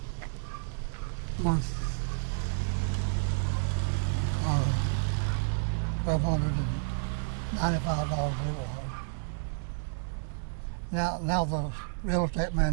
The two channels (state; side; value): silent; left; 56 dB below the other